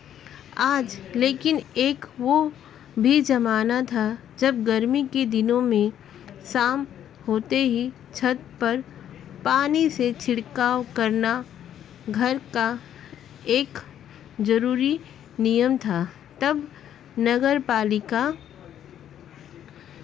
आज। लेकिन एक वो भी ज़माना था जब गर्मी के दिनों में शाम होते ही छत पर पानी से छिड़काव करना घर का एक ज़रूरी नियम था। तब नगर पालिका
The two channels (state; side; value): quieter; right; 10.3 dB